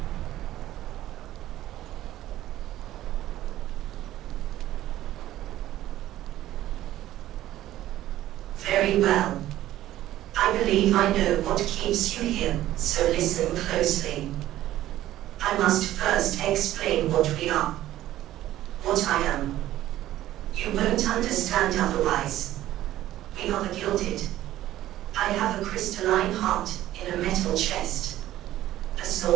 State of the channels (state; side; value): quieter; left; 14.0 dB